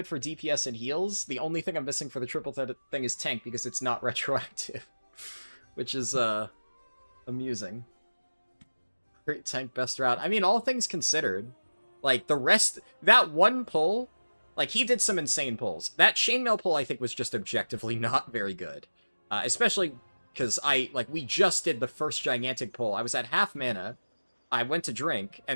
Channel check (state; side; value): inverted; both; correlation -1.00